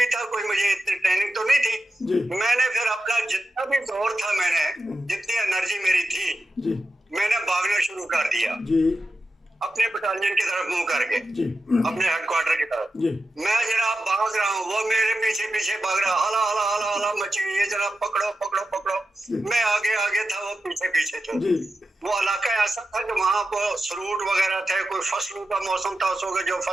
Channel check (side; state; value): both; normal; correlation 0.90